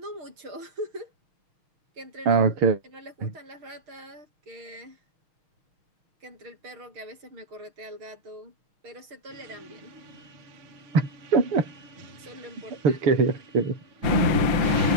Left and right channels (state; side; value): late; left; 6.4 ms